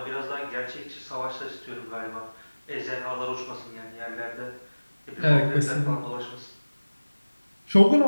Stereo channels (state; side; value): inverted; both; correlation -1.00